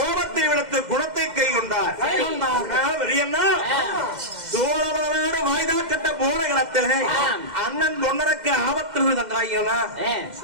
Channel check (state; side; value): late; left; 2.1 ms